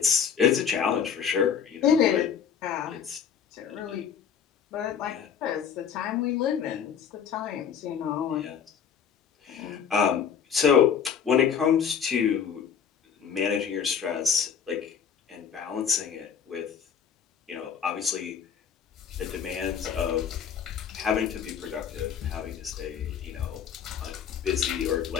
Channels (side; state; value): right; quieter; 7.6 dB